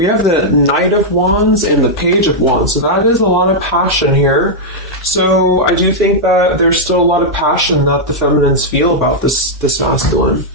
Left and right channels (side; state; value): both; normal; correlation -0.05